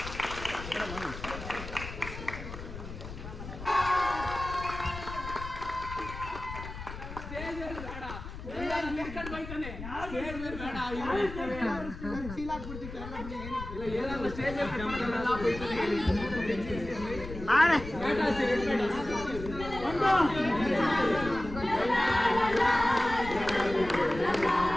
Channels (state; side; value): noise; left; rumble, 10 dB below the sound